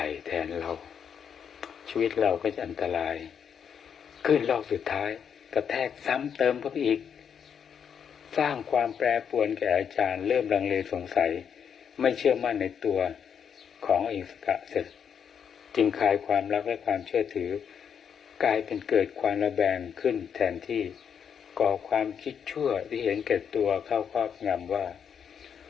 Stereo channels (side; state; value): right; quieter; 7.6 dB